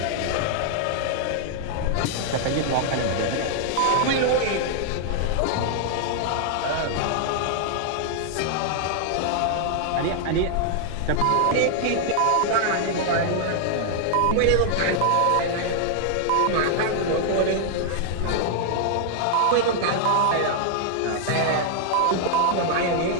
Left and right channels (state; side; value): different; both; correlation 0.00